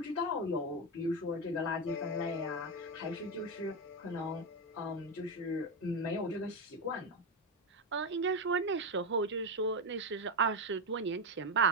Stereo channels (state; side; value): normal; both; correlation 0.10